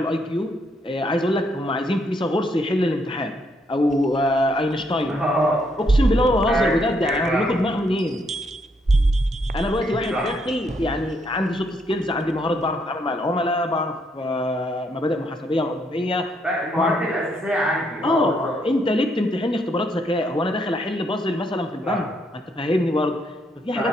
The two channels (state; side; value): normal; both; correlation 0.74